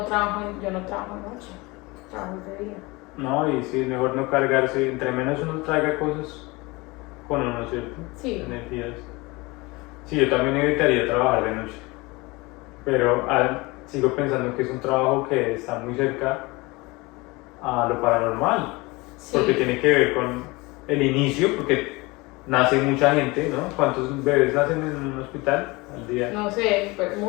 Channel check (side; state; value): right; quieter; 23.9 dB